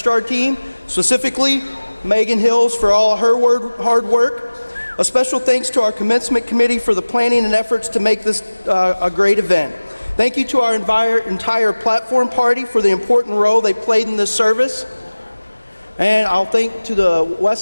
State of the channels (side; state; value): both; inverted; correlation -1.00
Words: team, specifically Megan Hills for all of her hard work. A special thanks to our commencement committee for the planning and efforts to make this a great event. Thank you to our entire platform party for the important role they played in this service. And I'll thank to the